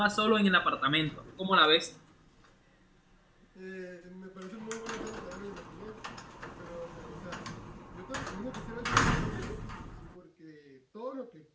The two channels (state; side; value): identical; both; correlation 1.00